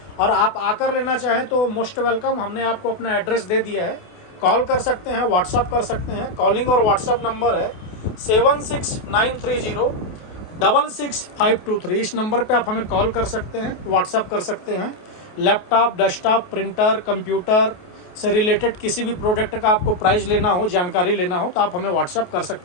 और आप आकर लेना चाहें तो मोस्ट वेलकम, हमने आपको अपना एड्रेस दे दिया है। कॉल कर सकते हैं, व्हाट्सअप कर सकते हैं। कॉलिंग और व्हाट्सअप नंबर है 7693066523। इस नंबर पे आप हमें कॉल कर सकते हैं, व्हाट्सअप कर सकते हैं। लैपटॉप, डेस्कटॉप, प्रिंटर, कंप्यूटर से रिलेटेड किसी भी प्रोडक्ट का आपको प्राइस लेना हो, जानकारी लेना हो तो आप हमें व्हाट्सअप कर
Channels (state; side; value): late; right; 28 ms